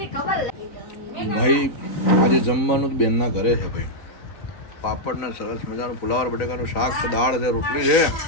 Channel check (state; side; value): late; right; 3.9 ms